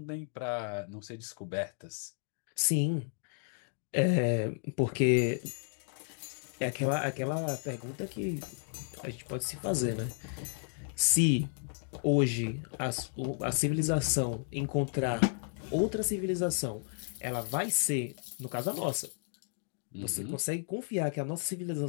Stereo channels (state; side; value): silent; right; 56 dB below the other